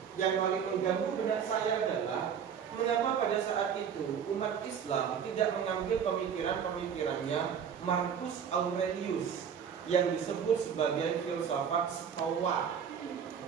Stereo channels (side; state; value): left; quieter; 7.6 dB